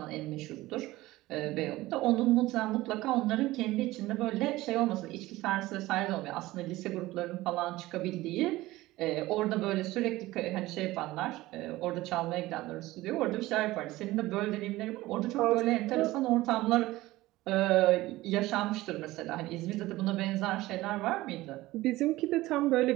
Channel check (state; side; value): quieter; left; 18.0 dB